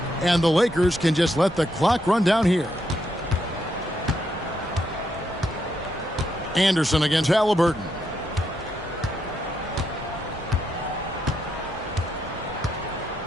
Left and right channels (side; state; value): both; normal; correlation 0.79